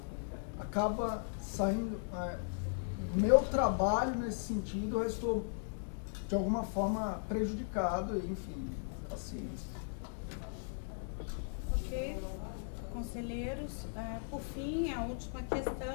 acaba saindo. Meu trabalho nesse sentido, eu estou de alguma forma prejudicado, enfim, assim. Ok, conselheiros, por fim, a última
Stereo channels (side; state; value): right; silent; digital silence